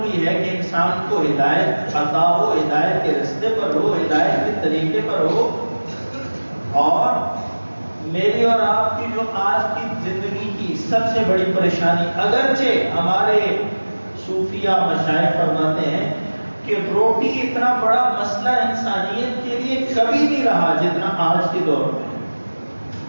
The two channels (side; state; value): both; inverted; correlation -1.00